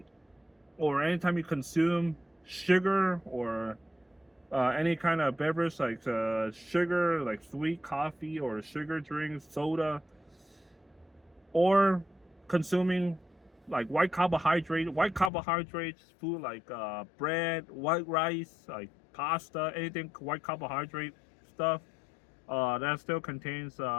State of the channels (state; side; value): drops out; right; at 15.3 s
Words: or anytime you consume sugar or any kind of beverage like sugar, like sweet coffee or sugar drinks, soda, or consuming like white carbohydrates food like bread, white rice, like pasta, anything white carbohydrate stuff, that still contains